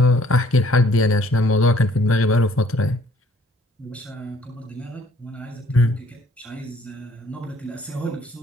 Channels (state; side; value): normal; both; correlation 0.60